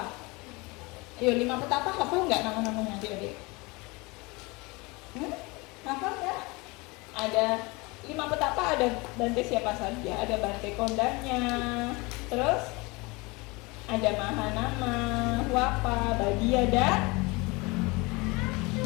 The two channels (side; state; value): right; quieter; 25.6 dB